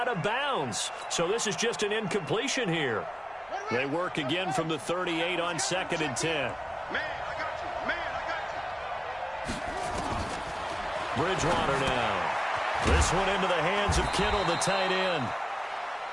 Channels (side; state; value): both; identical; correlation 1.00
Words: of bounds. So this is just an incompletion here. They work again from the 38 on 2nd and 10. Man, I got you. Bridgewater now. This one into the hands of Kittle, the tight end.